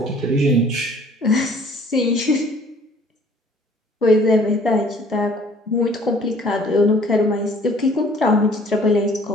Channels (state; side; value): normal; both; correlation 0.55